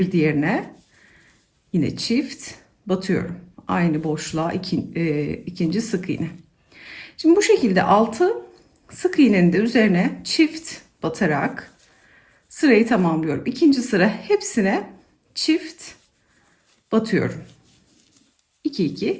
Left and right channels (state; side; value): identical; both; correlation 1.00